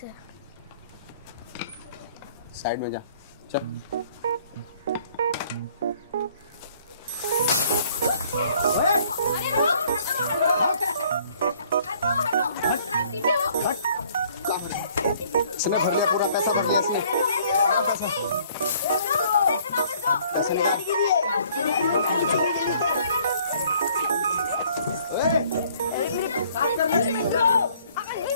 है। साइड में जा, चल। इसने भर लिया, पूरा पैसा भर लिया इसने। पैसे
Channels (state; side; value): inverted; both; correlation -0.59